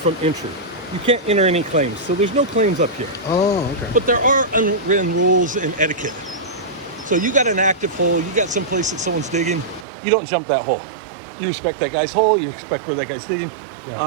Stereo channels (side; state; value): left; drops out; at 9.9 s